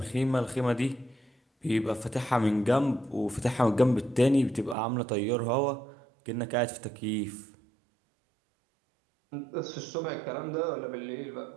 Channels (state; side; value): drops out; left; at 4.8 s